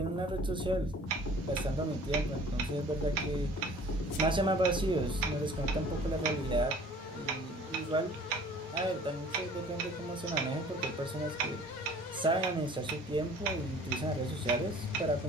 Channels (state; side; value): normal; both; correlation 0.49